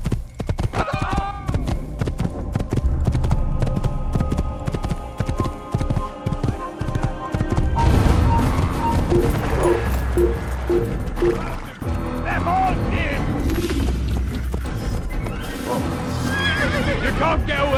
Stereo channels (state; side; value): identical; both; correlation 1.00